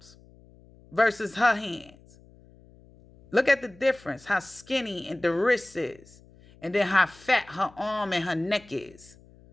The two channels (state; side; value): noise; left; hum, 25 dB below the sound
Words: versus her hands. Look at the difference, how skinny and the wrist is, and then how fat her arm and her neck is.